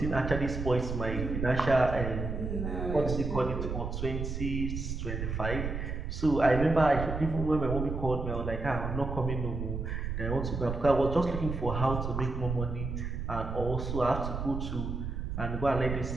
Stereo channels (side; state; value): right; noise; rumble, 4 dB below the sound